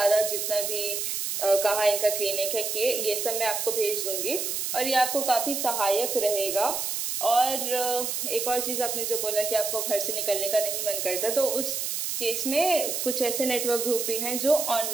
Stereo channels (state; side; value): noise; right; hiss, 2 dB below the sound